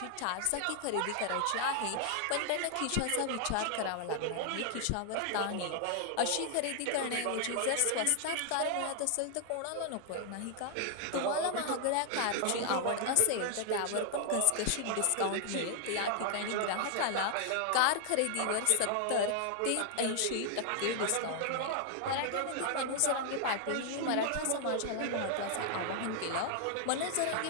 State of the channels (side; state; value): both; different; correlation 0.00